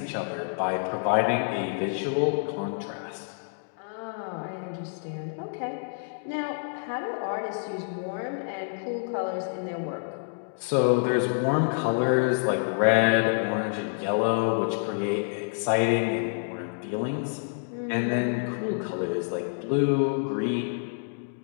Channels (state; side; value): silent; right; digital silence